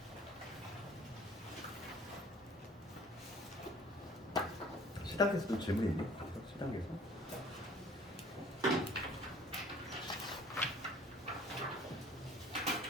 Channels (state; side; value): normal; both; correlation 0.51